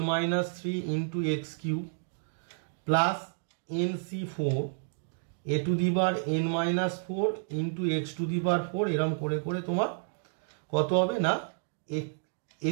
3 × x³ plus nc4 a⁴n - 4 × x⁴, এরম করে করে তোমার কত হবে না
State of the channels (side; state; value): left; silent; digital silence